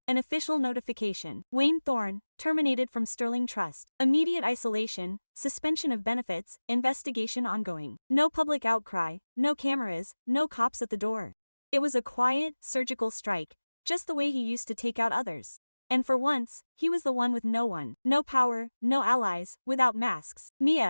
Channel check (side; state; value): both; inverted; correlation -1.00